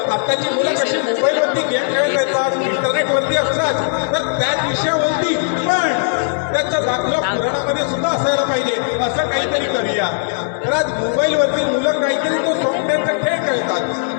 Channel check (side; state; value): right; silent; digital silence